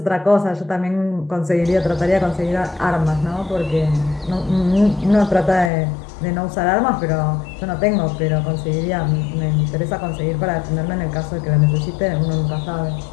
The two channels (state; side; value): drops out; right; at 5.7 s